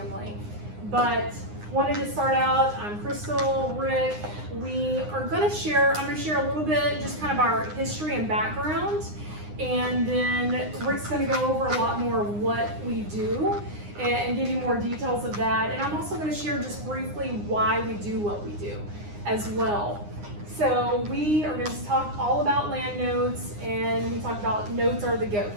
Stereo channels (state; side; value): late; left; 9.7 ms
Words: But wanted to start out, I'm Crystal, Rick. I'm gonna share a little bit, just kind of our history and background. And then Rick's gonna go over a lot more of what we do and give you more details of that. And I'm also gonna share just briefly why we do what we do as well. So we are going to talk all about land notes, and we talk about notes are the